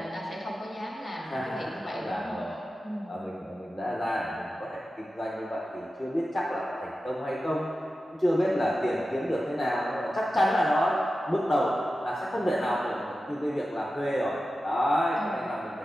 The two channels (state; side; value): normal; both; correlation 0.93